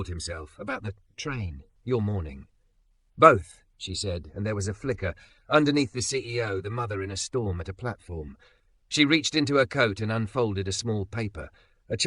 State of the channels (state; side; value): identical; both; correlation 1.00